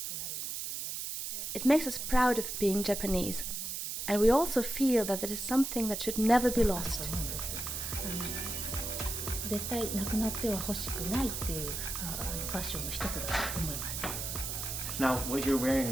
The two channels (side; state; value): right; noise; hiss, 4 dB below the sound